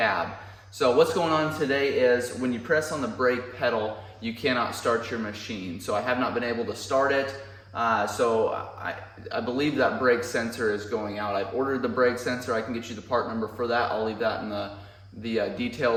So what's going on today is when you press on the brake pedal, you cannot start your machine. So I have not been able to start it. So I believe that brake sensor is going out. I've ordered the brake sensor. I can get you the part number for that. I'll leave that in the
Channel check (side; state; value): both; identical; correlation 1.00